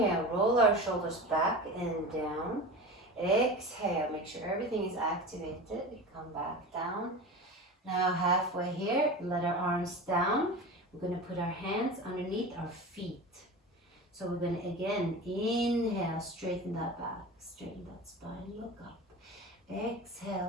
roll our shoulders back and down. Exhale, make sure everything is activated. Come back down. Now halfway here, let our arms down. We're going to put our hands underneath our feet. So we're going to again inhale, straighten that back, straighten that spine, look up.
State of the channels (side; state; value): both; normal; correlation 0.31